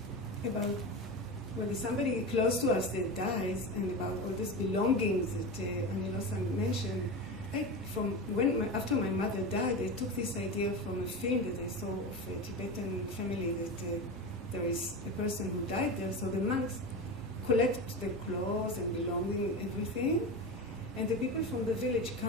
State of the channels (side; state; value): both; normal; correlation 0.24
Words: about when somebody close to us that dies, and about all these belongings that Losang mentioned. After my mother died, I took this idea from a film that I saw of a Tibetan family that there is a person who died there, so the monks collect the clothes and belonging, everything, and the people from the village